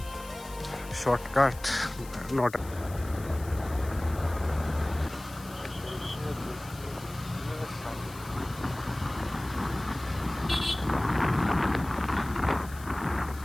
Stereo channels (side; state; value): left; noise; hiss, 18 dB below the sound